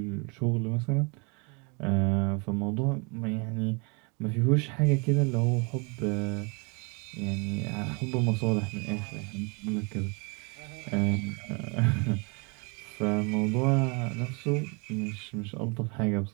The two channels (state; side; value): quieter; left; 32.4 dB